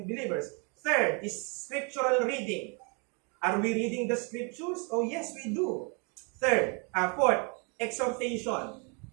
believers. Third is scriptural reading. Are we reading the scriptures? Oh yes, we do. Fourth, exhortation.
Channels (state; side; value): quieter; left; 34.0 dB